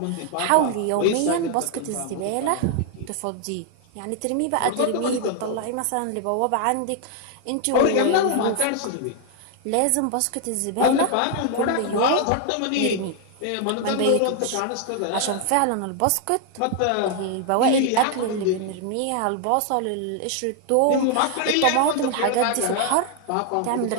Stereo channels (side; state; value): both; different; correlation 0.00